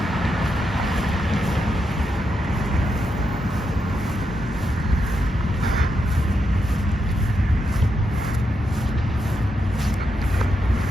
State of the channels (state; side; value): normal; both; correlation 0.84